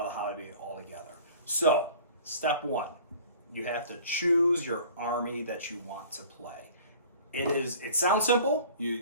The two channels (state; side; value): inverted; both; correlation -0.47